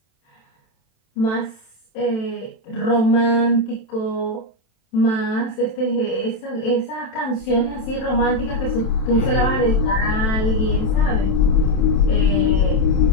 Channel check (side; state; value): right; late; 27 ms